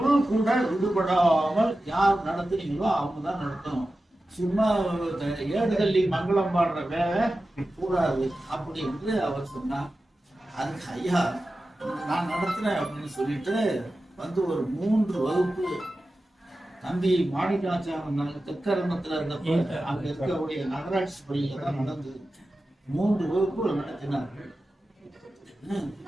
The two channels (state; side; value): normal; both; correlation 0.94